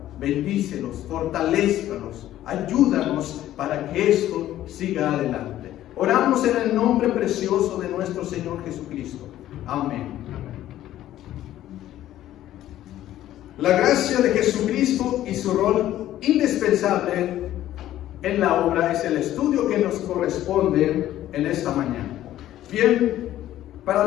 Bendícelos, fortalézcalos, ayúdanos para que esto siga adelante. Oramos en el nombre precioso de nuestro Señor Jesucristo. Amén. La gracia de Jesucristo y su rol indispensable en la obra es el estudio que nos corresponde en esta mañana. Bien,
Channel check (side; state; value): right; quieter; 13.2 dB